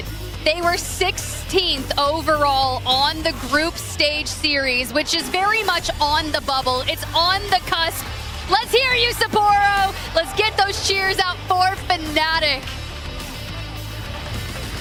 They were 16th overall on the group stage series, which is very much on the bubble. It's on the cusp. Let's hear you, Sapporo. Let's get those cheers out for Fnatic.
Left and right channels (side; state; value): both; identical; correlation 1.00